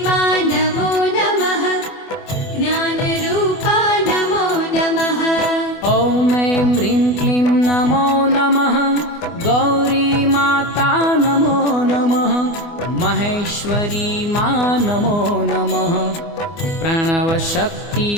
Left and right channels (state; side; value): late; right; 24 ms